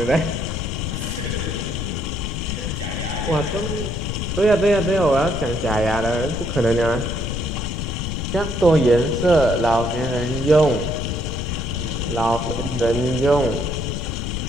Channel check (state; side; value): noise; left; rumble, 3 dB below the sound